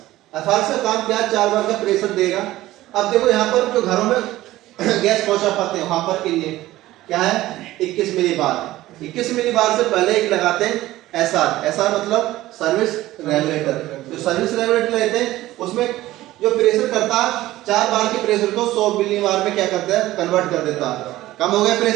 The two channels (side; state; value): left; quieter; 16.2 dB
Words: एफआरएस का काम क्या, 4 बार का प्रेशर देगा। अब देखो यहाँ पर जो घरों में गैस पहुंचा पाते हैं वहां पर के लिए क्या है 21 मिली बार। 21 मिली बार से पहले एक लगाते हैं एसआर। एसआर मतलब सर्विस रेगुलेटर। तो सर्विस रेगुलेटर लेते हैं, उसमें जो प्रेशर करता है 4 बार के प्रेशर को 100 मिली बार में क्या करता है कन्वर्ट कर देता है। कम हो गया